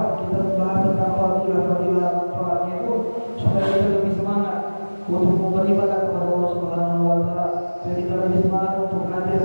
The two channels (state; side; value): inverted; both; correlation -1.00